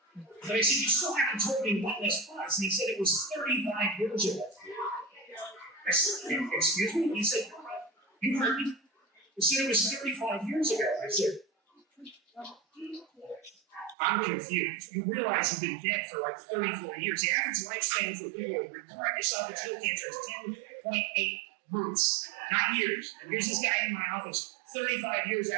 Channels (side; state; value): left; drops out; at 14.0 s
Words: But I said, you still haven't told me when this was. And he said, it was 35 years ago. I said, excuse me? He said, you heard me? He said, it was 35 years ago. I said, I'm confused. You realize you've been dead for like 34 years. The average lifespan for people with recurrent esophageal cancer is 10.8 months, not years. And here's this guy in my office 35 years